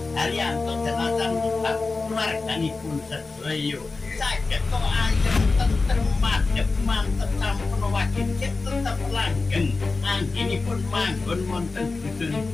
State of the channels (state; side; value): quieter; right; 3.8 dB